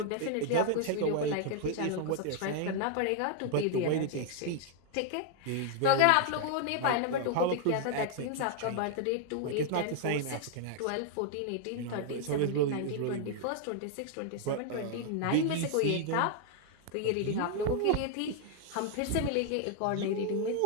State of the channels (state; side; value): different; both; correlation 0.00